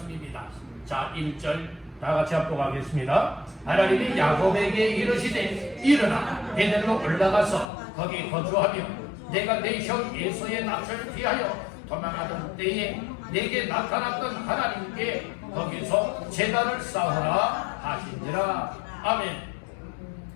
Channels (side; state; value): right; drops out; at 7.7 s